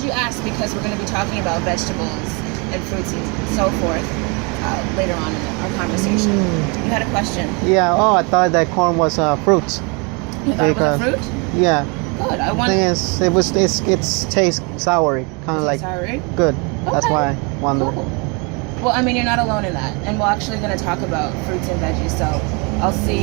you asked, because we're going to be talking about vegetables and fruits and so forth later on in our conversation. You had a question. Yeah. Oh, I thought that corn was fruits. You thought it was a fruit? Yeah. Good. I The want thing is, it tastes sour, kind of like sorry. good. That's Okay. why I wonder. Cool. Well, I mean, you're not alone in that, and we're actually going to talk about fruits and veggies. So I'll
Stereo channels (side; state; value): left; quieter; 31.6 dB